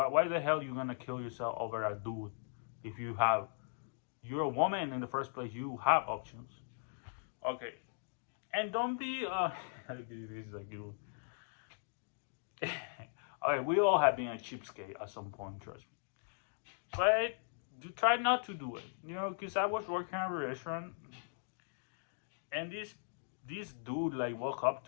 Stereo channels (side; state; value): right; silent; digital silence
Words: the hell you gonna kill yourself over a dude if you're a woman in the first place? You have options. Okay, and don't be this is a good one. Okay, we all have been a cheapskate at some point, trust me. But try not to do it. Because I was working at a restaurant And this dude like walk up